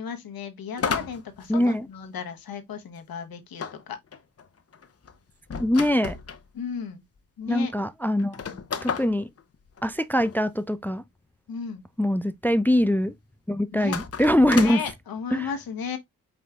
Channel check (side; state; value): both; normal; correlation 0.82